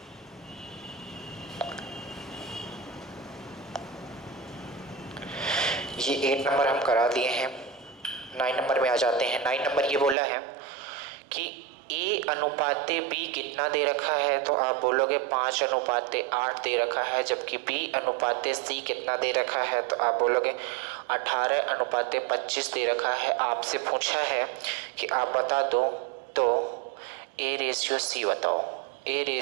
ये 8 नंबर हम करा दिए हैं, 9 नंबर में आ जाते हैं। 9 नंबर ये बोला है कि A अनुपाते B कितना दे रखा है, तो आप बोलोगे 5 अनुपाते 8 दे रखा है, जबकि B अनुपाते C कितना दे रखा है, तो आप बोलोगे 18 अनुपाते 25 दे रखा है। आपसे पूछा है कि आप बता दो तो A रेशियो C बताओ, A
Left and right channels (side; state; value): left; drops out; at 10.2 s